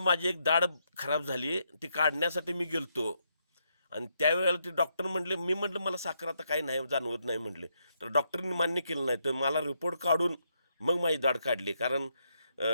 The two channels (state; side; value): inverted; both; correlation -0.78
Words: माझी एक दाढ खराब झाली. ती काढण्यासाठी मी गेलतो आणि त्यावेळेला ते डॉक्टर म्हटले, मी म्हटलं मला साखर आता काही नाही जाणवत नाही म्हटले. तर डॉक्टरनी मान्य केलं नाही. तर मला रिपोर्ट काढून मग माझी दाढ काढली. कारण